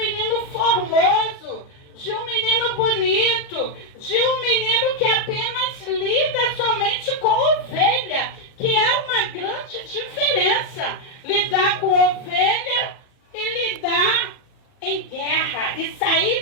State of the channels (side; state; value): right; late; 39 ms